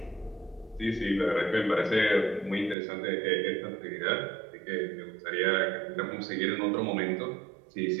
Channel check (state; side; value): drops out; left; at 2.8 s